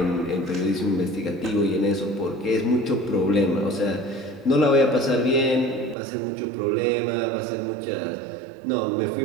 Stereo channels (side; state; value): left; drops out; at 6.0 s